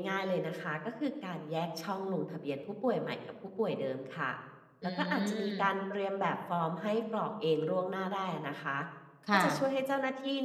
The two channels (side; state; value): both; identical; correlation 1.00